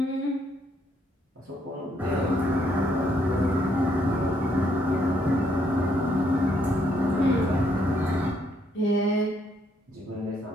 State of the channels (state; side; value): normal; both; correlation 0.72